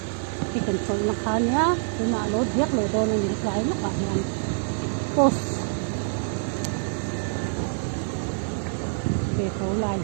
thì cần phải mặc khá nhá thì mà lối viết lối đồ này những cái lúc bạn làm post về phố lại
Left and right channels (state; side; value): silent; left; digital silence